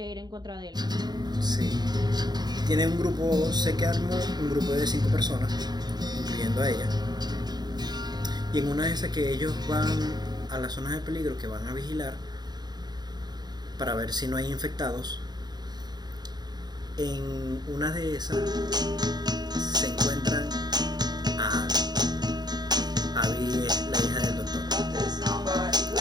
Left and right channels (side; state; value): left; late; 0.20 ms